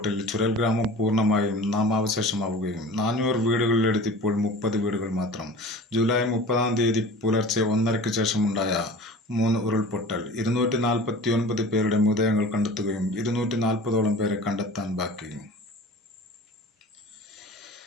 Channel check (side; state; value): both; normal; correlation 0.39